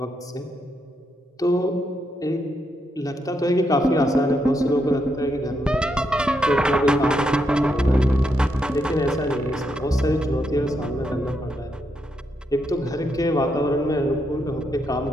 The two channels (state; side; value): normal; both; correlation 0.80